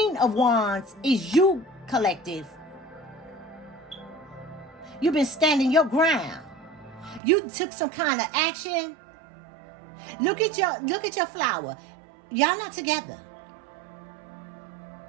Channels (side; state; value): left; drops out; at 7.2 s